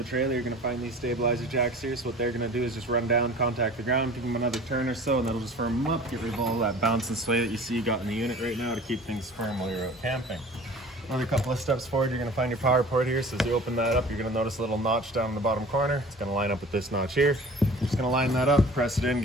trailer, you're going to find these stabilizer jacks here. So what they're going to do is just run down, contact the ground, give them another turn or so, and that'll just firm them up, get rid of all that bounce and sway that you see you got in the unit right now to keep things firm while you're out camping. Another couple of steps forward, you're going to find your power port here. So as you open that up, you're going to notice a little notch down in the bottom corner. It's going to line up with this notch here. You're just going to line that up, press it in,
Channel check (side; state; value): both; normal; correlation 0.44